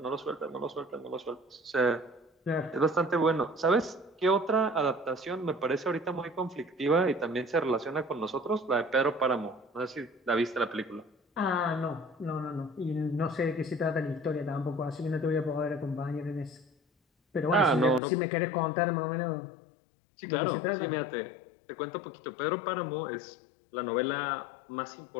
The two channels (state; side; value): drops out; right; at 18.0 s